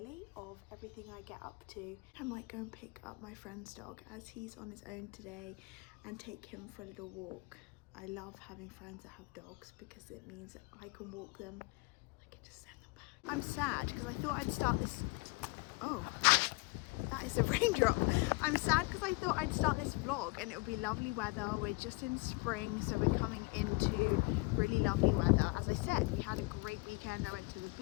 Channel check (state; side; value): quieter; right; 26.0 dB